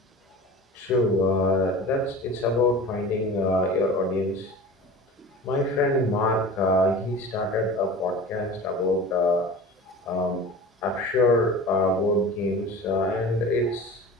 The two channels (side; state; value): both; normal; correlation 0.36